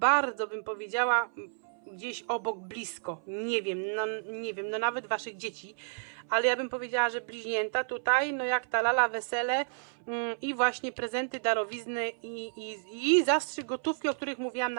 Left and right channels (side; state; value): left; silent; 57 dB below the other